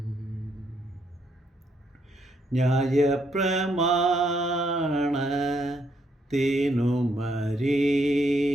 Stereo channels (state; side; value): normal; both; correlation 0.74